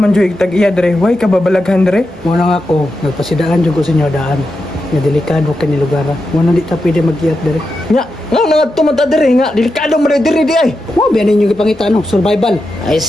dyan tag-iya dre. Huwag ka babalaghan dre. Muna nga ako, nagpasidaan dyan ko sa inyo daan. Nga delikado ka ni lugar. Muna di ta pwede mag-iat dere. Nga nga tumata diri nga delikado man diri di ay. Wow, biyan ninyo ipangita no, survival. Ay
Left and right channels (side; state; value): both; normal; correlation 0.88